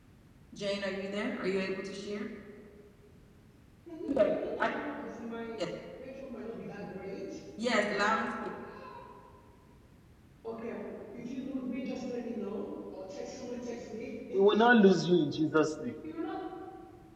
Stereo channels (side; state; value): both; identical; correlation 1.00